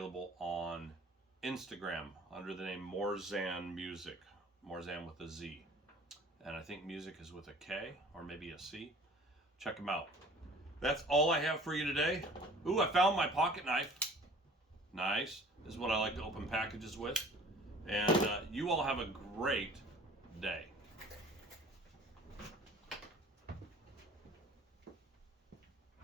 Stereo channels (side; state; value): both; normal; correlation 0.48